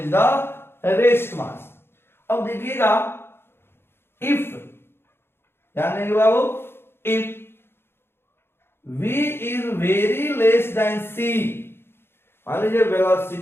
the rest mass. अब देखिएगा if, ध्यान देंगे बाबू, if v is very less then c, मान लीजिए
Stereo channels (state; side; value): late; right; 0.11 ms